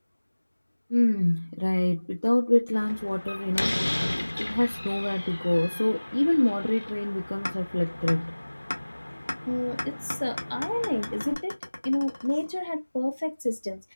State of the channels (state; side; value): inverted; both; correlation -1.00